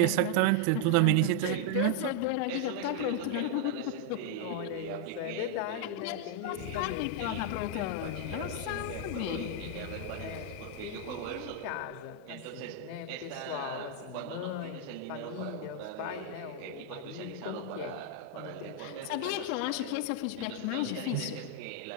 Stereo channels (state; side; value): different; both; correlation 0.00